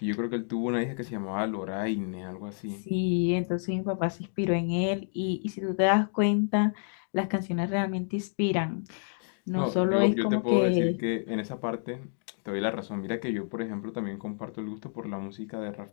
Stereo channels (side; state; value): right; silent; digital silence